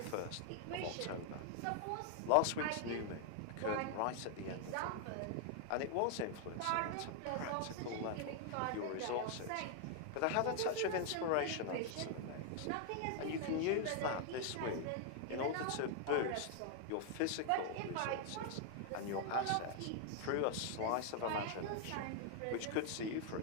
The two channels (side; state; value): both; different; correlation 0.00